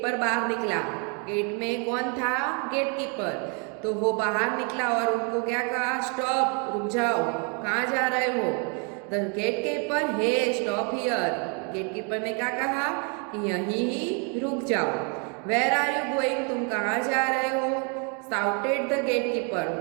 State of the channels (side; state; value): left; quieter; 36.7 dB